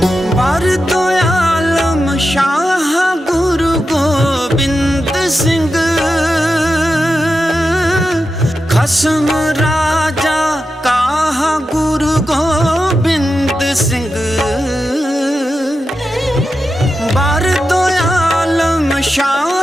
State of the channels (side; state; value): both; normal; correlation 0.90